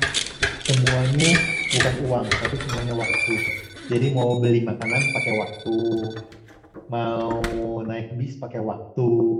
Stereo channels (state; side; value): identical; both; correlation 1.00